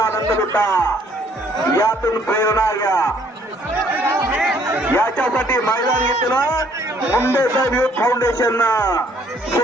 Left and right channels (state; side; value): normal; both; correlation 0.63